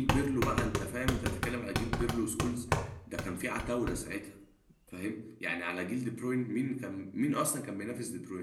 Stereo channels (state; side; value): identical; both; correlation 1.00